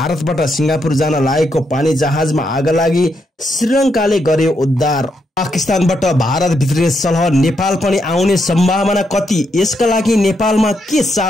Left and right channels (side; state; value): both; normal; correlation 0.80